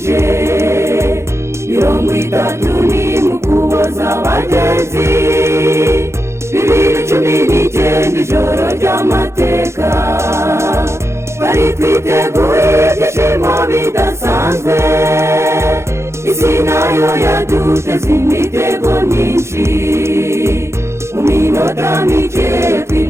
30 mu kuboza abagenzi, 2019 ijoro ry'amateka, bari twiteguye ibyishimo bidasanzwe, isi nayo yaduteze imitego myinshi, mu minota mike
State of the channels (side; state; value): left; late; 0.13 ms